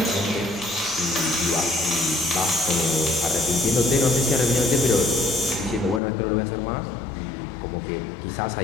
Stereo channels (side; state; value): right; drops out; at 6.0 s